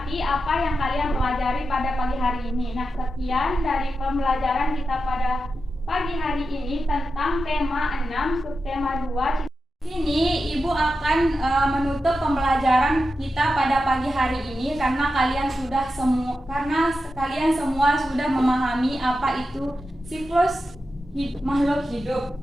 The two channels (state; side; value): normal; both; correlation 0.90